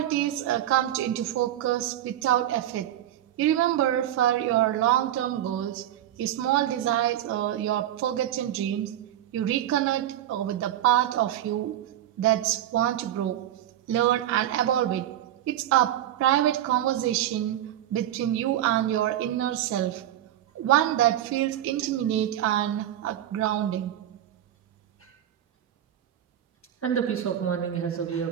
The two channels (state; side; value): quieter; left; 12.1 dB